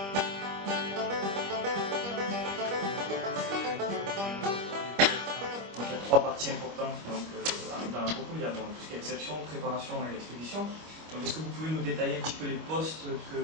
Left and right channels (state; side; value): late; left; 25 ms